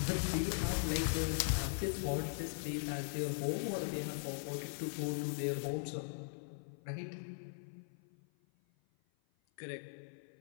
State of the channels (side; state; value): right; silent; 51 dB below the other